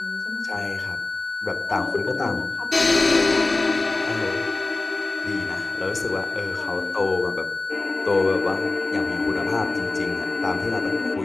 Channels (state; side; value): quieter; right; 3.3 dB